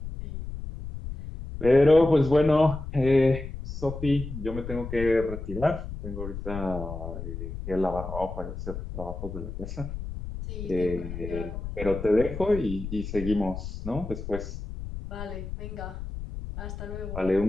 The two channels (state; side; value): noise; left; rumble, 8 dB below the sound